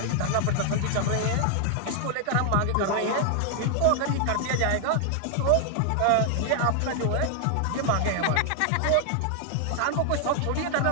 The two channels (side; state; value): both; different; correlation 0.00